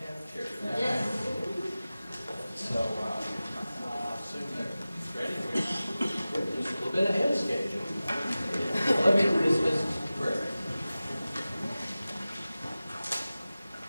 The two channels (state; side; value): inverted; both; correlation -0.96